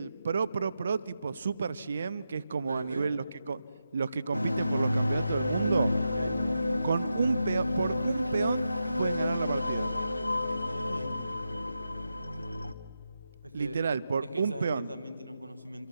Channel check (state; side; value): inverted; both; correlation -0.88